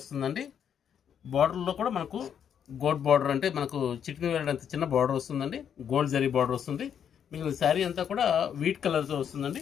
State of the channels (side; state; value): right; quieter; 8.4 dB